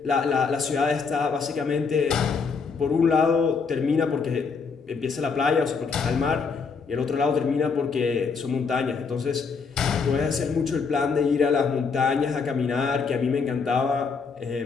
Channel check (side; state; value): right; quieter; 5.2 dB